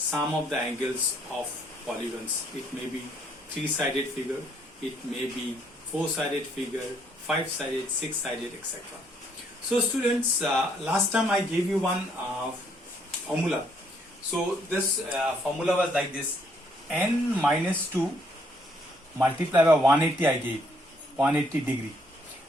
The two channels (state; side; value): normal; both; correlation 0.69